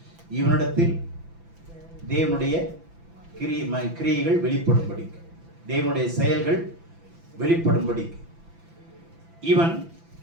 இவனிடத்தில் தேவனுடைய கிரியைகள் வெளிப்படும்படி, தேவனுடைய செயல்கள் வெளிப்படும்படி இவன்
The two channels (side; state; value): left; late; 6.0 ms